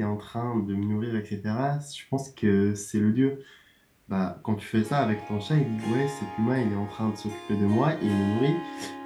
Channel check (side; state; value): both; identical; correlation 1.00